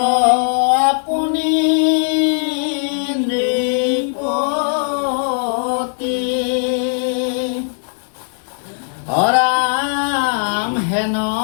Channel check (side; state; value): right; silent; 67 dB below the other